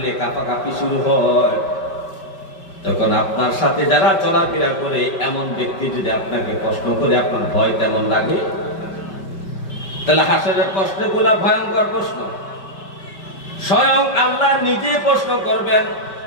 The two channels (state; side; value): late; right; 5.2 ms